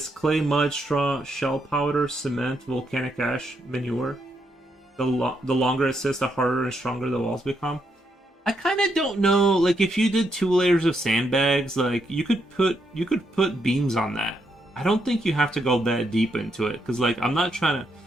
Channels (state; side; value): normal; both; correlation 0.79